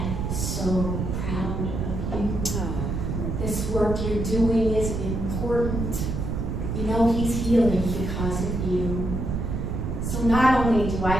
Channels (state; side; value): noise; right; rumble, 2 dB below the sound